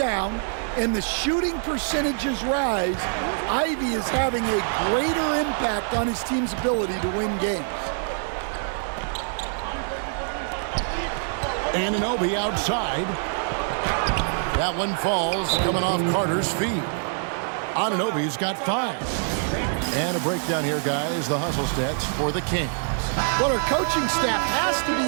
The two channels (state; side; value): silent; left; digital silence